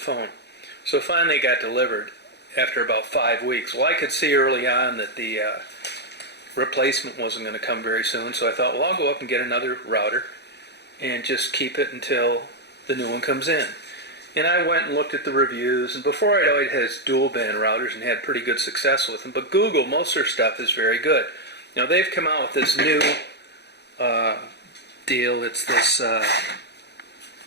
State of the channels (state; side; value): late; right; 0.49 ms